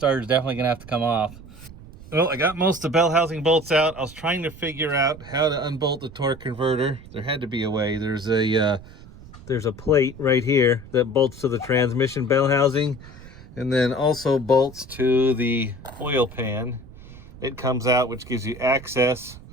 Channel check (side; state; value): right; noise; rumble, 18 dB below the sound